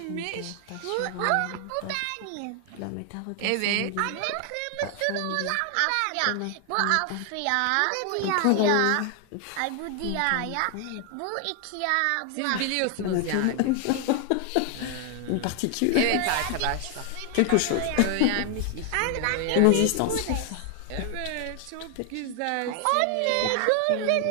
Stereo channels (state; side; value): different; both; correlation 0.00